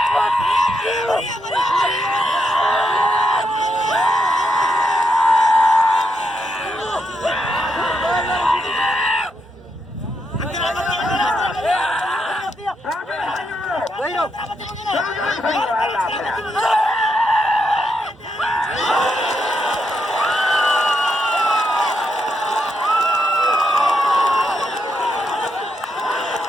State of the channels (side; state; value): both; normal; correlation 0.81